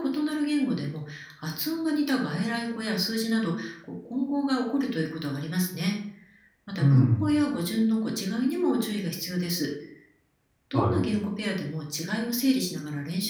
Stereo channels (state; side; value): identical; both; correlation 1.00